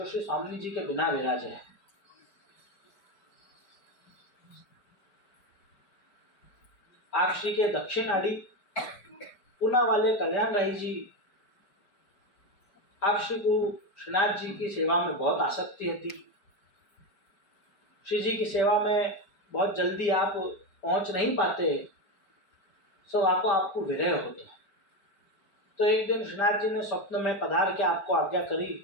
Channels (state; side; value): late; right; 4.9 ms